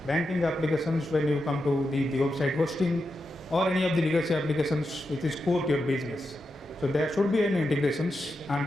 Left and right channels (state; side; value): normal; both; correlation 0.87